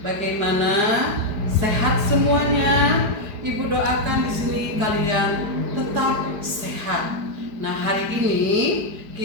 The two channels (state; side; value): late; left; 4.8 ms